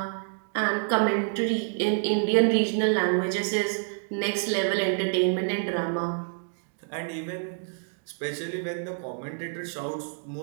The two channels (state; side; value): silent; left; digital silence